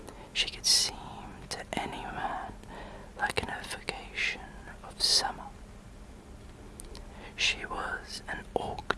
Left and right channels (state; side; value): identical; both; correlation 1.00